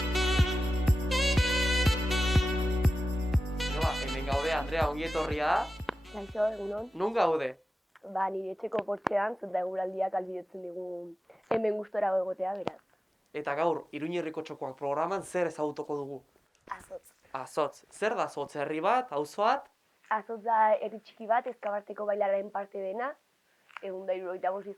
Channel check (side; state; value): both; normal; correlation 0.95